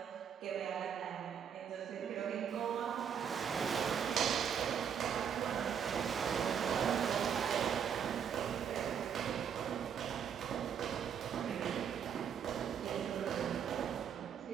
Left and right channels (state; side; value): quieter; left; 7.9 dB